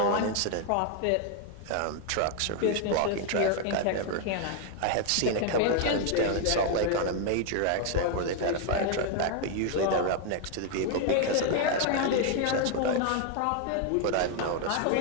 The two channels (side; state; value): both; different; correlation 0.01